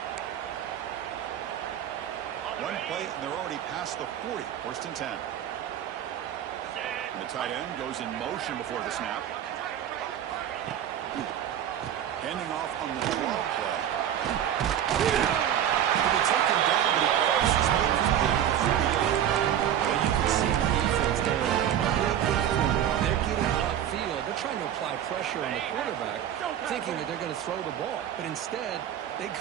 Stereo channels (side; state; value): left; quieter; 10.3 dB